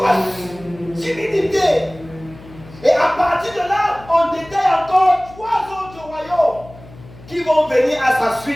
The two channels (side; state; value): left; noise; hum, 20 dB below the sound